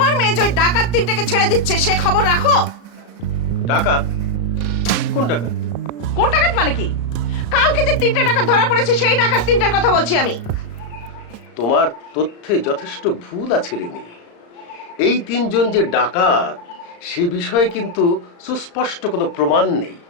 মেয়ে যে ওই ডাকাত তিনটাকে ছেড়ে দিচ্ছে সে খবর রাখো? ডাকাত? কোন ডাকাত? কোন ডাকাত মানে কি? কালকে যে তিনটা ডাকাত ধরা পড়েছে সেই ডাকাত তিনটার কথা বলছি আমি। তোমার তথ্যে যথেষ্ট ভুল আছে রেনি। এই তিনজন যে ডাকাত সে বিষয়ে কিন্তু সুস্পষ্ট কোনো প্রমাণ নেই।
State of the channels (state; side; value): late; right; 35 ms